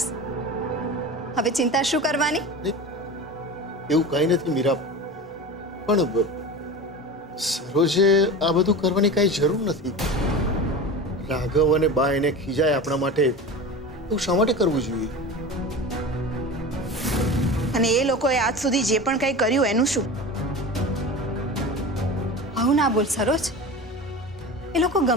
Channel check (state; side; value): normal; both; correlation 0.30